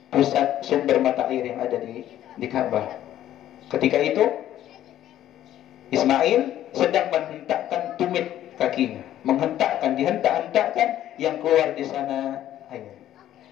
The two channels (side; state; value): right; quieter; 12.3 dB